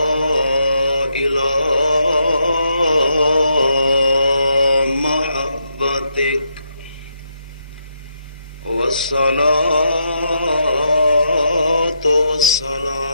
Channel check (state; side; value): inverted; both; correlation -0.79